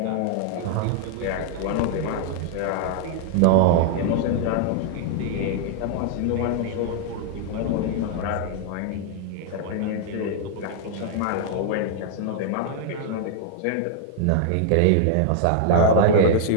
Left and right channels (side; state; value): both; different; correlation -0.01